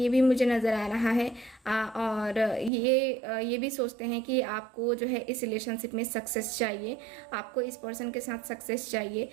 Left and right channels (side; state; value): left; drops out; at 2.7 s